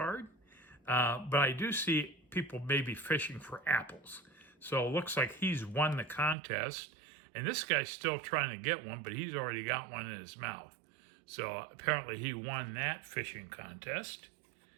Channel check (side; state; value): left; drops out; at 6.4 s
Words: but I do see people maybe fishing for apples. So it looks like he's won the contest, and this guy's still trying to get one, but he's already got one in his mouth. So apparently he won that fishing contest.